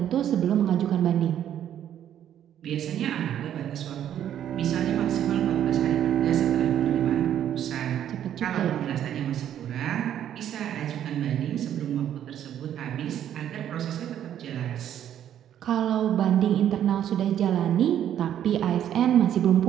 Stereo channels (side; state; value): left; quieter; 10.4 dB